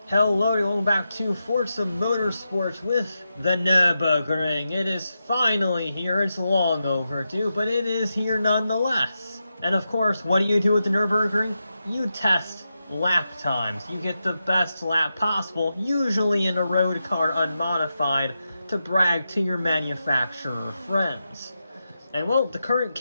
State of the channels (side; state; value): both; inverted; correlation -0.88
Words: Hello, welcome back to Forza Motorsport with the Nurburgring. It is finally here. It's long overdue, but it is here nonetheless. And of course, what do you do with the Nurburgring? You test lap times. You get the best lap possible, usually in a road car unmodified, to brag to your manufacturer friends. And well, the current